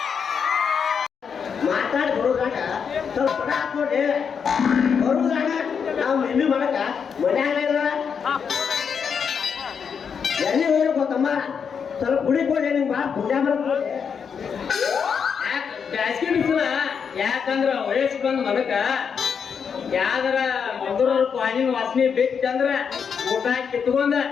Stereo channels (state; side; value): quieter; right; 6.6 dB